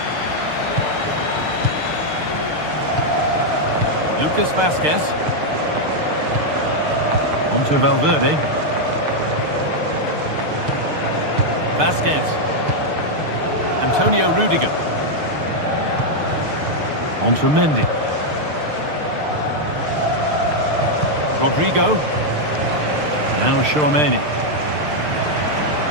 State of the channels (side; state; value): left; late; 6.6 ms